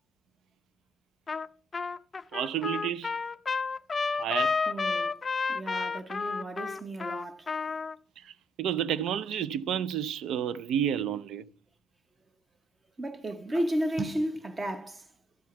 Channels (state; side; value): normal; both; correlation 0.70